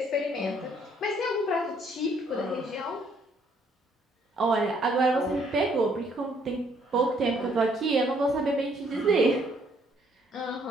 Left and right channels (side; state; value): both; normal; correlation 0.66